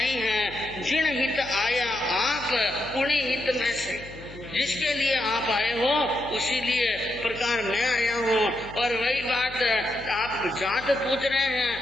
है। जिन हित आया आप उन्हीं हित में से, जिसके लिए आप आए हो उसी लिए प्रकार मैं आया हूँ। और वही बात आप जात पूछ रहे हैं,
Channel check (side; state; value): left; noise; hum, 17 dB below the sound